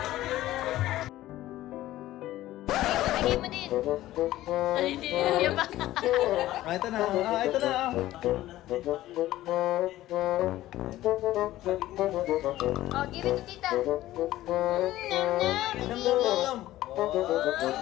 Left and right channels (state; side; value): quieter; right; 15.1 dB